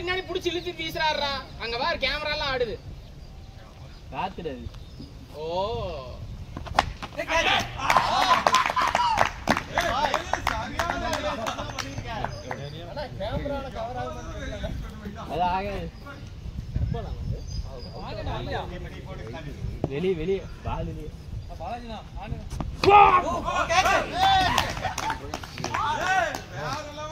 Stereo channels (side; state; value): both; identical; correlation 1.00